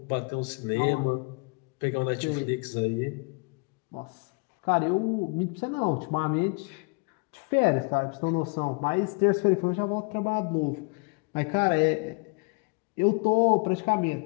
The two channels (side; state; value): right; quieter; 31.8 dB